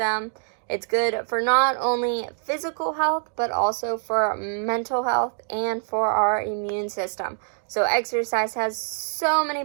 It's good for not only physical health, but also for mental health and for our immune system. So exercise has so many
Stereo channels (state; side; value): silent; left; digital silence